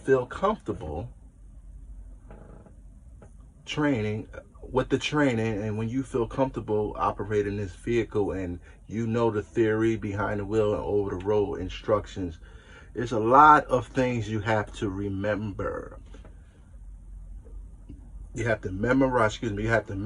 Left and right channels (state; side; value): identical; both; correlation 1.00